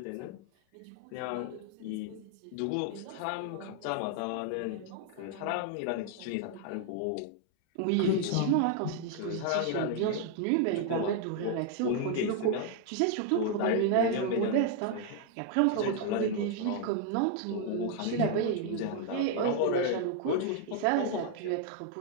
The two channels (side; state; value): both; different; correlation 0.00